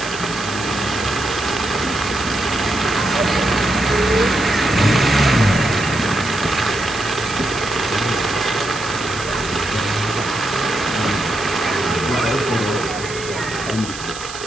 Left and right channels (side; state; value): right; noise; hiss, 11 dB below the sound